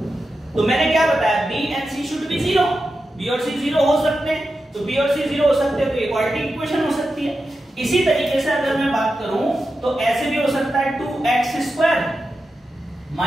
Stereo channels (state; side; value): normal; both; correlation 0.90